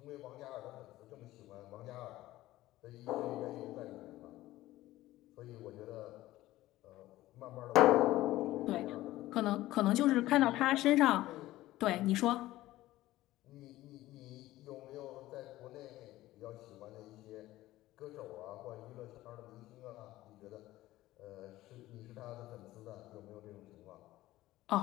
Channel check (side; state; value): right; quieter; 16.3 dB